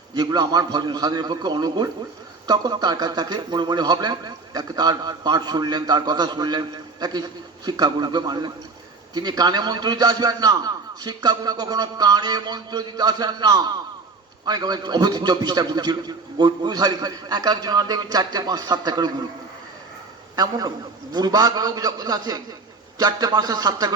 যেগুলো আমার ভজন সাধনের পক্ষে অনুকূল, তখন তার কাছে তাকে মনে মনে ভাবলেন, তাকে তার পাঠ শুনলেন, তার কথা শুনলেন, তাকে শিক্ষাগুরুকে মানলেন। তিনি কানে মন্ত্র দিতে আসবেন না, শিক্ষাগুরু কখনো কানে মন্ত্র দিতে আসেন না। অনেক অবধি 24টা গুরু ছিল, গুরুধারী এক একজন দেখবেন 4টে 5 7টা করে গুরু। এমন বুড়বাগ লোক যখন আছে 4টে 5টা 7টা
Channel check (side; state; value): left; quieter; 4.0 dB